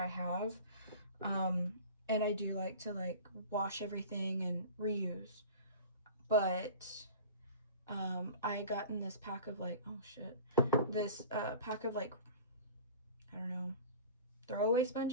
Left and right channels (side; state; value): both; inverted; correlation -0.39